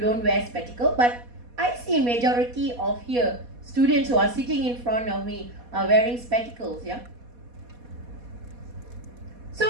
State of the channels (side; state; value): left; late; 4.2 ms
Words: wear spectacle, but I see majority of here students who are sitting in front of me are wearing spectacles, yeah. So